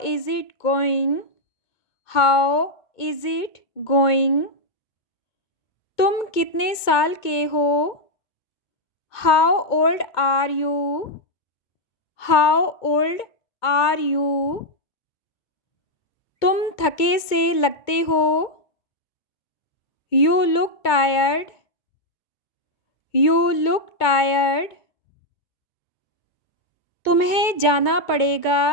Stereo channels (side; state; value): right; late; 2.2 ms